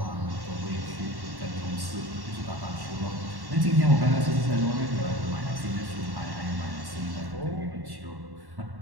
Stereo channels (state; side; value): late; left; 1.1 ms